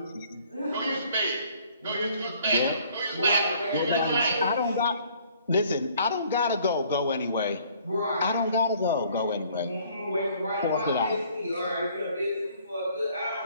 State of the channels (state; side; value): inverted; both; correlation -0.59